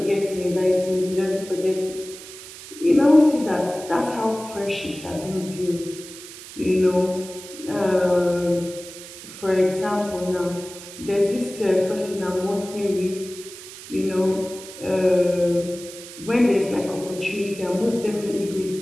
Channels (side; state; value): right; noise; hiss, 15 dB below the sound